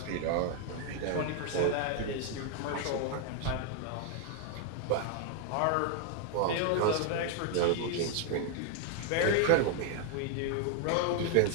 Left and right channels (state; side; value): different; both; correlation 0.01